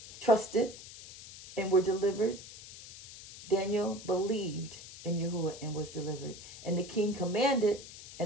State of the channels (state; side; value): noise; left; hiss, 15 dB below the sound